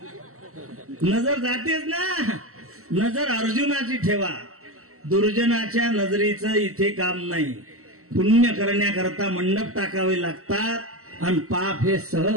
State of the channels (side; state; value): left; late; 0.64 ms